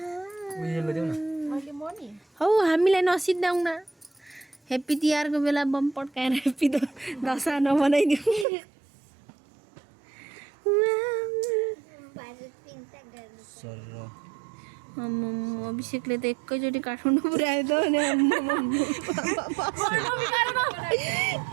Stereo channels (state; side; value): drops out; left; at 8.5 s